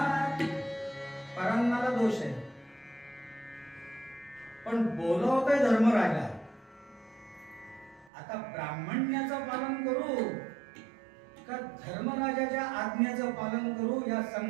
परान्नाला दोष आहे, पण बोलवतोय धर्मराजा. आता ब्राह्मण्याचं पालन करू का धर्मराजाच्या आज्ञेचं पालन करू, या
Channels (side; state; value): left; drops out; at 8.1 s